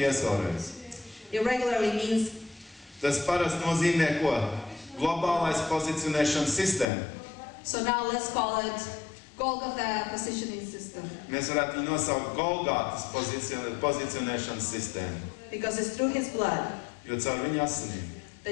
vēlreiz. Irregularly means Tas parasti nozīmē ko? Globālais pozicionēšanas sistēma. so now let's call it Golgotha positioning system. Mēs varētu viņu nosaukt Golgātas pozicionēšanas sistēmu. Because it's through His blood Jo caur viņa asinīm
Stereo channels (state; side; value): drops out; right; at 6.9 s